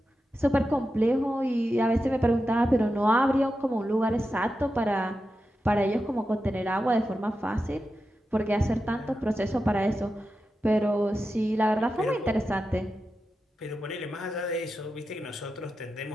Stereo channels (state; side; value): normal; both; correlation 0.90